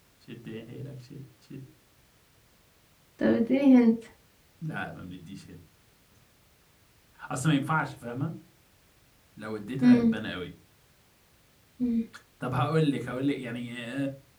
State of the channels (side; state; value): both; identical; correlation 1.00